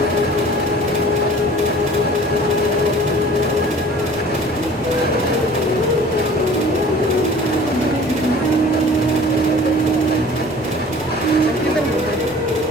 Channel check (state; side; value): normal; both; correlation 0.46